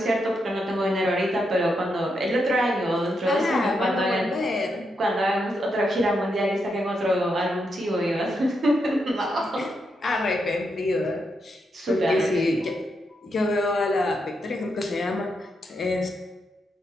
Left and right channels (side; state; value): both; normal; correlation 0.82